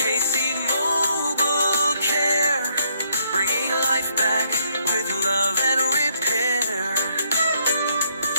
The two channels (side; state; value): both; inverted; correlation -0.71